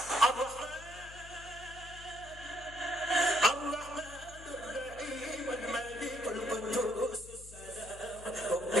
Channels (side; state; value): left; noise; hum, 16 dB below the sound